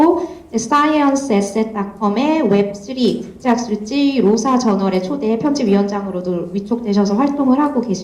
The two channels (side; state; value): both; identical; correlation 1.00